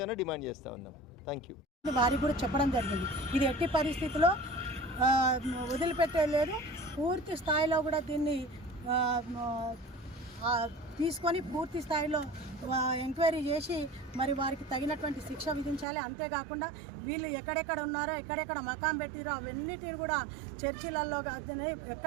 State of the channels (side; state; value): left; drops out; at 15.9 s